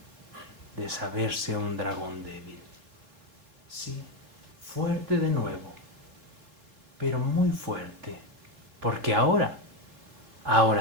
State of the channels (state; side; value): late; left; 3.1 ms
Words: de saberse un dragón débil. Sí, fuerte de nuevo, pero muy fuerte, porque ahora